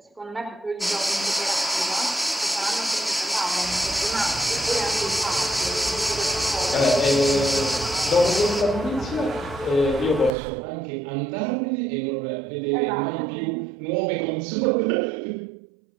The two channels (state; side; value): drops out; left; at 10.3 s